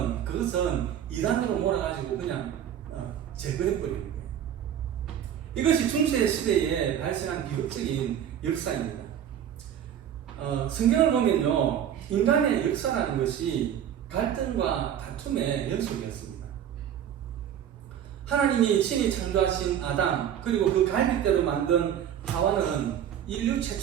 그것은 이단으로 몰아가지고 그냥 제거해버리는 거예요. 이것이 중세 시대에 발생한 비극적인 역사입니다. 성경을 보면요, 인간의 역사라는 것이 갈등과 다툼의 연속이었습니다. 하나님이 친히 창조하신 아담, 그리고 그 갈빗대로 만든 하와는 인류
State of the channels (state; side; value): quieter; left; 9.7 dB